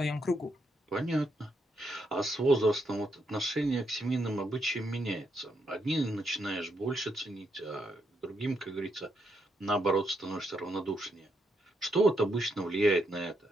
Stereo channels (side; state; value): both; normal; correlation 0.79